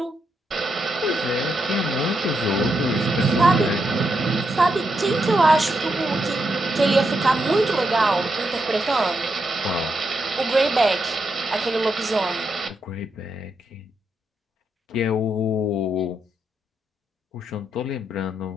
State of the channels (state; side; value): normal; both; correlation 0.82